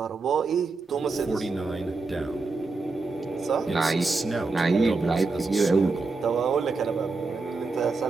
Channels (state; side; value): quieter; left; 3.9 dB